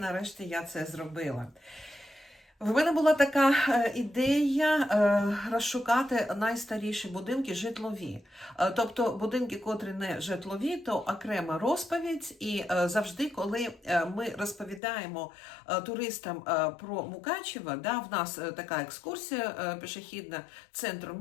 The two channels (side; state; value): right; drops out; at 14.8 s